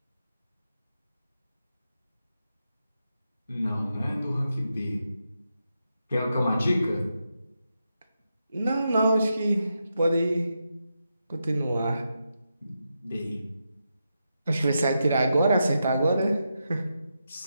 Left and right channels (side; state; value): both; inverted; correlation -0.86